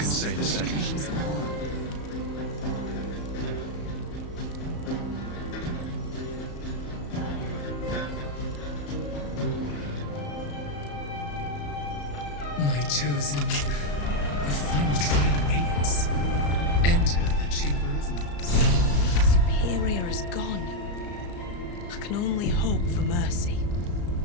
say the which same. claims them all. My chosen, the final trial awaits. Enter the Chamber of Loss. Superior is gone. I can only hope for mercy.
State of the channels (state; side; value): late; right; 34 ms